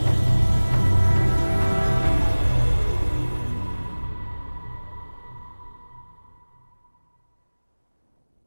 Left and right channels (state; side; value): inverted; both; correlation -1.00